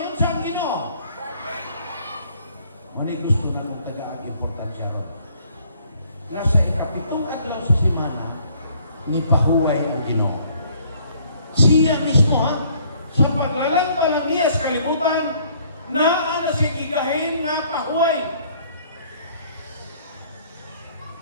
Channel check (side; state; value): both; inverted; correlation -0.62